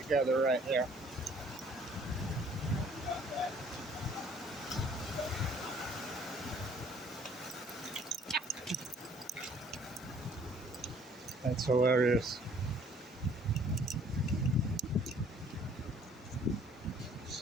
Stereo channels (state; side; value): normal; both; correlation 0.58